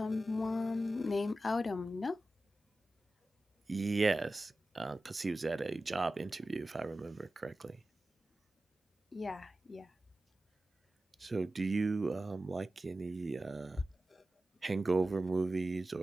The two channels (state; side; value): normal; both; correlation 0.94